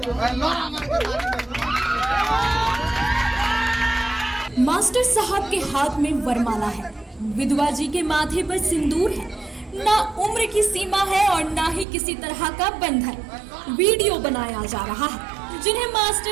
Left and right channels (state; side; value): drops out; left; at 11.9 s